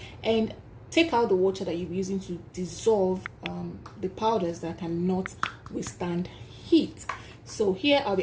and take out the water that you're using to dissolve the powders that cannot withstand heat. So here I'll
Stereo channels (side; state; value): both; identical; correlation 1.00